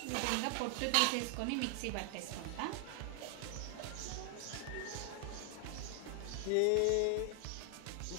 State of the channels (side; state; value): both; different; correlation 0.00